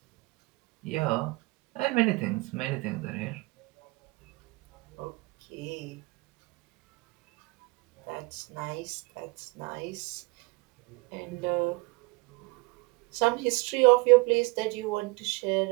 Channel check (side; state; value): left; quieter; 25.5 dB